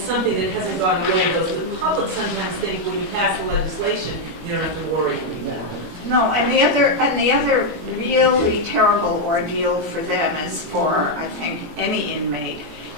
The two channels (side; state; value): left; late; 20 ms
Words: something that hasn't gone away. Though the public sometimes think when you pass the legislation, you don't have to worry anymore. No, and the other really terrible ordeal for them, as for I think any inmate,